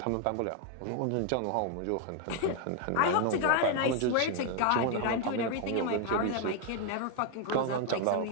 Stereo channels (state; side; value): different; both; correlation 0.00